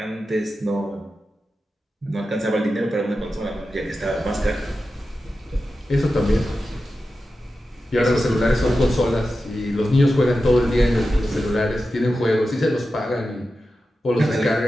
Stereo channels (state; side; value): normal; both; correlation 0.92